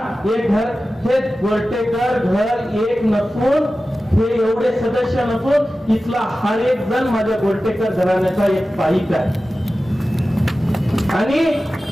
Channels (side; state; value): both; normal; correlation 0.95